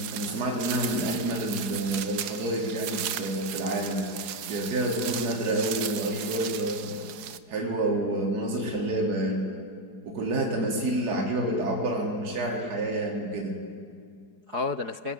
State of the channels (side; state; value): left; late; 4.8 ms